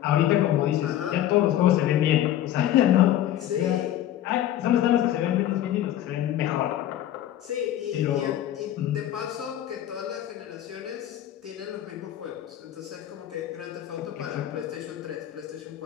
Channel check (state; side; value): quieter; right; 12.2 dB